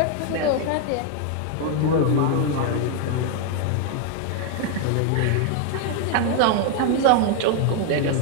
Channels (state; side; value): different; both; correlation 0.00